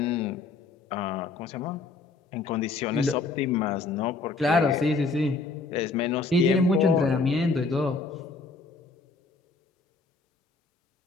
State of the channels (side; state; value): right; quieter; 3.9 dB